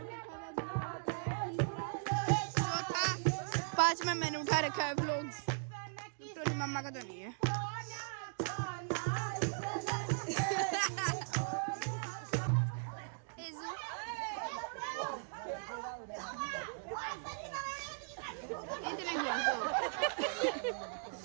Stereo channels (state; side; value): silent; left; digital silence